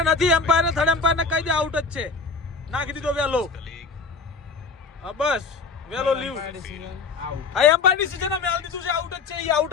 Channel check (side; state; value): right; quieter; 4.6 dB